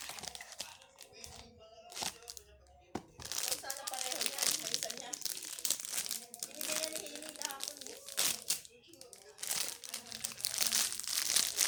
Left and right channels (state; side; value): identical; both; correlation 1.00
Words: Kung sana pareho niyan, sa isa niya. Binigay yan ni Hailey kahapon, eh.